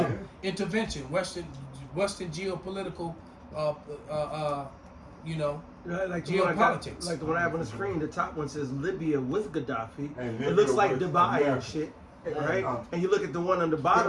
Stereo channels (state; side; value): identical; both; correlation 1.00